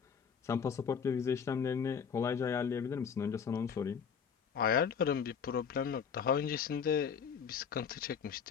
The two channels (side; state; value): right; quieter; 6.9 dB